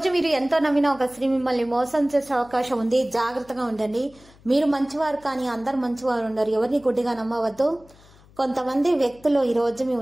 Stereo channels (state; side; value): noise; left; hum, 26 dB below the sound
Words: మీరు ఎంతో నమ్మిన ఒక స్త్రీ మిమ్మల్ని మోసం చేసే అవకాశం ఉంది. జాగ్రత్తగా ఉండండి. మీరు మంచివారు కానీ అందరు మంచివారు ఉండరు. ఎవరిని గుడ్డిగా నమ్మవద్దు. కొంతమంది వ్యక్తులు ఈ రోజు మీ